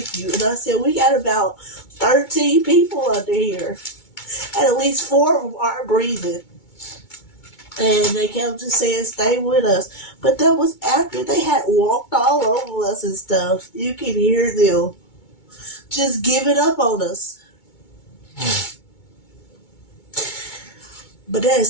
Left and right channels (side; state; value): right; late; 2.2 ms